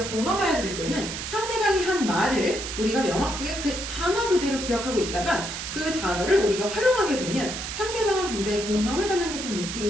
공감하여 들을 때는 상대방이 한 말을 우리가 명확하게 그 단어 그대로 기억하고 있다가 그 단어를 우리가 활용하게 되면 상대방은 굉장히 공감을 받는 듯한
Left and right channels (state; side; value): noise; right; hiss, 6 dB below the sound